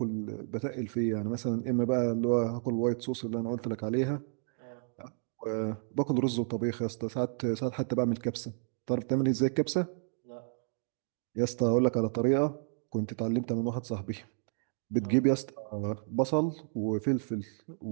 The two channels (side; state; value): left; silent; digital silence